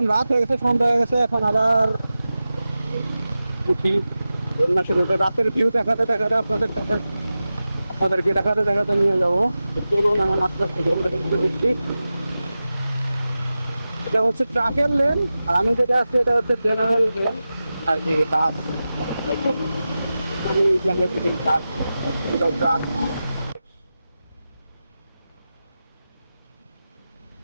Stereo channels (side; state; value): both; inverted; correlation -0.94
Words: রাত হয়ে গেছে, সন্ধ্যা হয়ে গেছে, এখন আবার উঠি যমুনা সেতুতে। রাতের ভিউ দেখাতে দেখাতে আপনাদেরকে দেখাতে দেখাতে নিয়ে যাবো। তো চলুন এখন আস্তে আস্তে যমুনা সেতুতে দেখছি। এটা হচ্ছে ট্রাকের লেন, আর আমি যেটা আছি এটা হচ্ছে জেনারেল লেন আর কি, বাস। আমি ট্রাক, এটা ট্রাক।